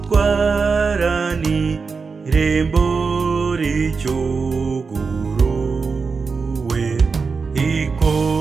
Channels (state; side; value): quieter; left; 4.9 dB